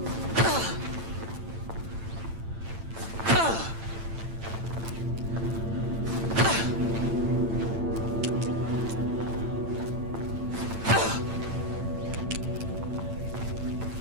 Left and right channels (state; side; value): late; left; 8.9 ms